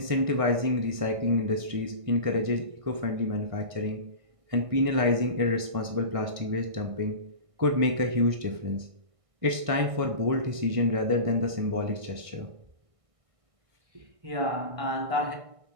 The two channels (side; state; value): left; late; 1.6 ms